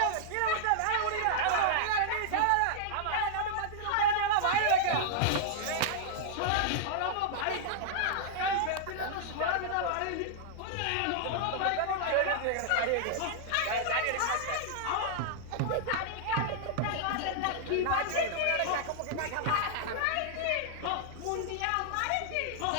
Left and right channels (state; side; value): different; both; correlation -0.01